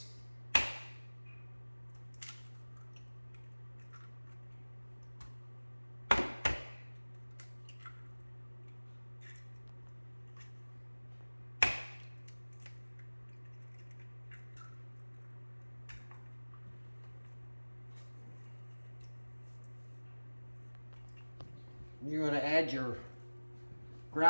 You're going to add your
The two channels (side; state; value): both; inverted; correlation -1.00